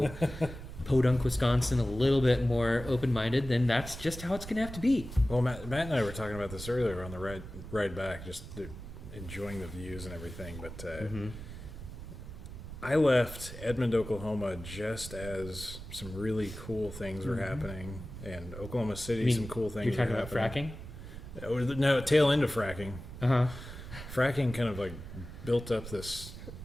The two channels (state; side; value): noise; right; rumble, 11 dB below the sound